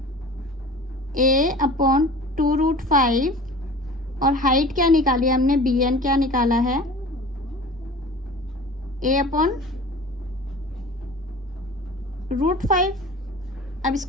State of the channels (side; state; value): both; normal; correlation 0.40